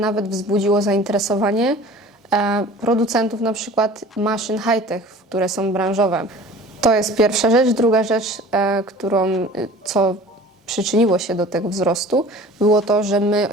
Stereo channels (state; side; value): normal; both; correlation 0.44